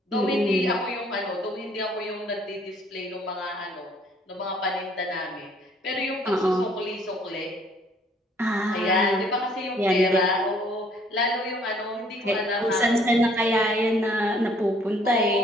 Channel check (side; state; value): both; normal; correlation 0.61